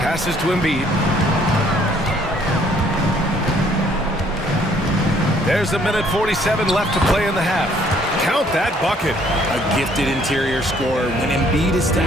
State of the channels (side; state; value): both; normal; correlation 0.63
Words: to Embiid. There's a minute 47 left to play in the half. Count that bucket. A gifted interior scorer. When Embiid